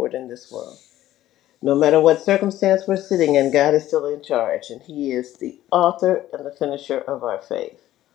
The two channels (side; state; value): right; quieter; 13.9 dB